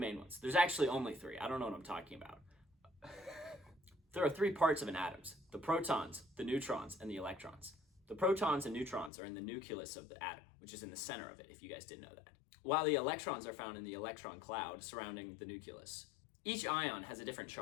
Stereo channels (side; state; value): right; drops out; at 9.1 s